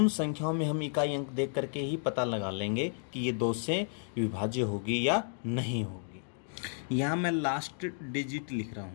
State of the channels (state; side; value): silent; right; digital silence